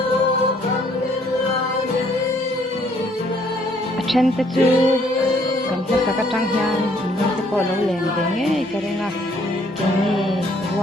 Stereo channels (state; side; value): normal; both; correlation 0.64